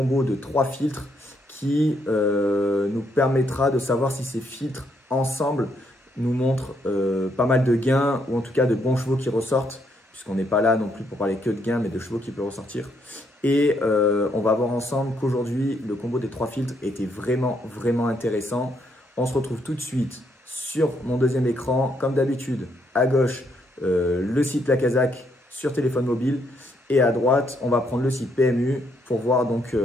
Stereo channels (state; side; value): normal; both; correlation 0.74